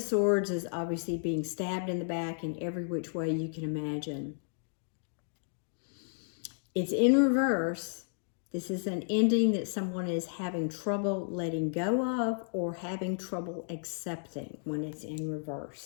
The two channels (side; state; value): right; silent; digital silence